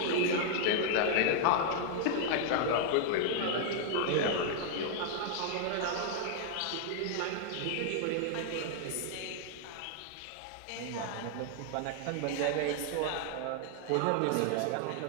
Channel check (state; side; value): different; both; correlation 0.00